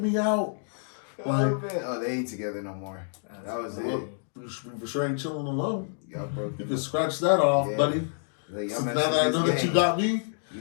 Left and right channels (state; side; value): silent; right; digital silence